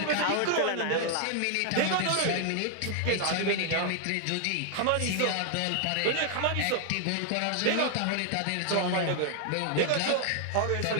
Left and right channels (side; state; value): both; different; correlation 0.00